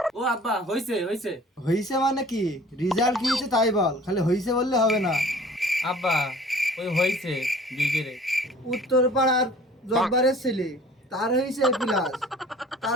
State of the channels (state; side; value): normal; both; correlation 0.49